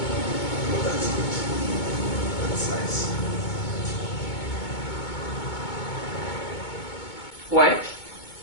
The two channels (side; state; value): right; late; 2.2 ms